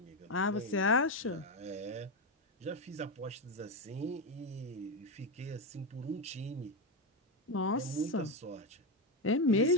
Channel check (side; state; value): both; normal; correlation 0.10